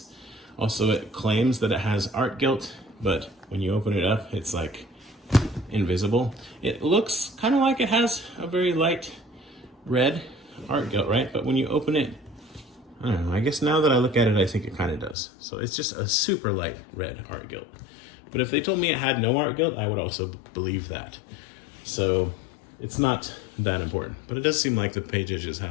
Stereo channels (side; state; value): right; drops out; at 15.2 s